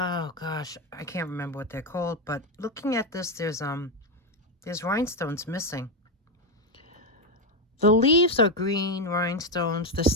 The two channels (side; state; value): both; normal; correlation 0.09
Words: gosh, I can't remember what they're called. But looking at this, there's rhinestones missing. The leaves are green rhinestones. The